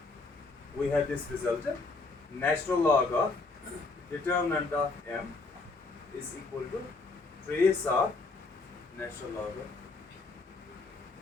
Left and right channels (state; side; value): quieter; right; 3.7 dB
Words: we have this result, natural log of determinant of M is equal to trace of natural log of.